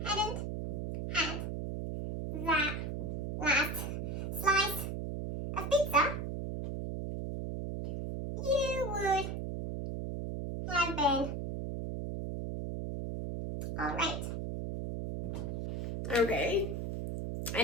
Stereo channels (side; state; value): right; noise; hum, 4 dB below the sound